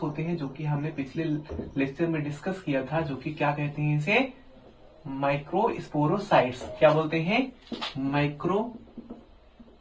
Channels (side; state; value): both; identical; correlation 1.00